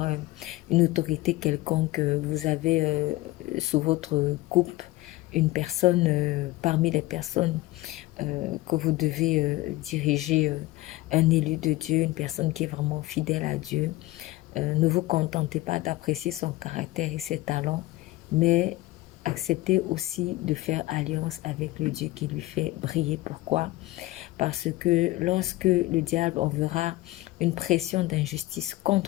une autorité quelconque, vous avez sous votre coupe une personne parmi les personnes que vous devez diriger, un élu de Dieu, une personne qui est vraiment fidèle à Dieu. Ne vous contentez pas d'apprécier son caractère et ses talents, mais acceptez aussi de faire alliance avec le Dieu qui lui fait briller. Pourquoi? Parce que lorsque le diable enverra une pression d'injustice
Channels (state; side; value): quieter; right; 18.4 dB